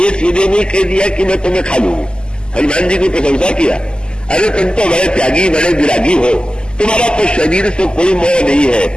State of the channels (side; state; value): right; late; 0.047 ms